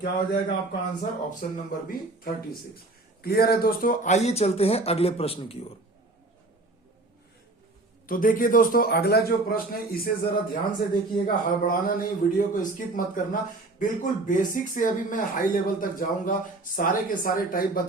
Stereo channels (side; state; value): left; quieter; 3.0 dB